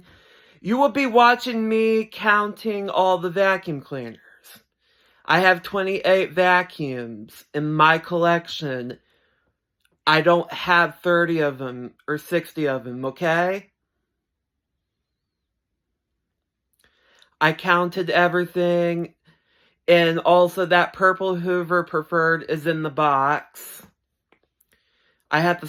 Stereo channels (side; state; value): both; identical; correlation 1.00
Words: You will be watching me counting all the vacuum cleaners. I have 28 vacuums in my collection. I don't have 30 of them or 60 of them, okay? I counted everything, and also that purple Hoover Preferred is in the box. I have to